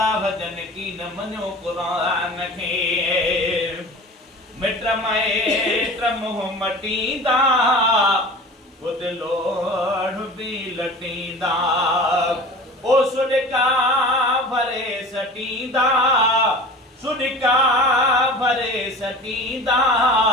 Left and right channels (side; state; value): both; normal; correlation 0.38